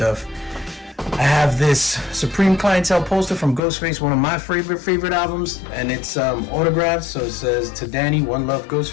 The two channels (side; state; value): right; drops out; at 3.6 s